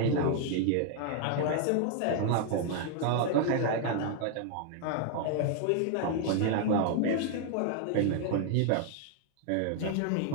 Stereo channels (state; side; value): different; both; correlation 0.00